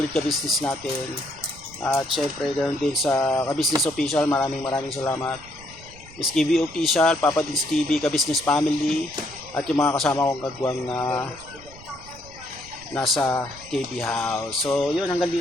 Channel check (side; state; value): right; noise; rumble, 20 dB below the sound